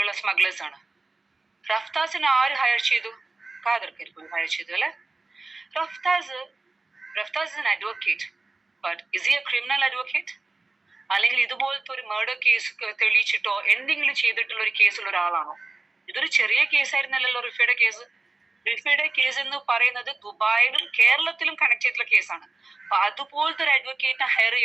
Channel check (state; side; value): quieter; left; 3.5 dB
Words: സ്മഗ്ലേഴ്സ് ആണ്. റഫ്താസിനെ ആര് ഹയർ ചെയ്തു? ഖാദർ കരിപ്പൊടി ഹയർ ചെയ്തു അല്ലെ. Raftas is an advocate, but is he a criminal advocate? അല്ലെങ്കിൽ ഇതുപോലത്തെ ഒരു മർഡർ കേസ് തെളിയിച്ചിട്ടോ എന്തെങ്കിലും ചെയ്തിട്ടുള്ള ഒരു കേസുള്ള ഒരാളാണോ? ഇതൊരു ചെറിയ കേസായിരുന്നല്ലോ റിഫയുടെ കേസ്. റിഫയുടെ കേസ് എന്ന് പറയുന്നത് ദുബായിലും കേരളത്തിലും കണക്ട് ചെയ്തിട്ടുള്ള കേസാണ്. അപ്പൊ അതുപോലത്തെ ഒരു അഡ്വക്കേറ്റിനെ ഹയർ